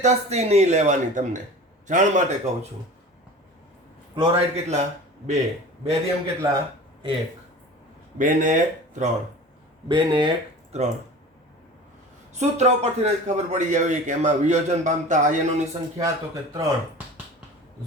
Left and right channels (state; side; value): normal; both; correlation 0.38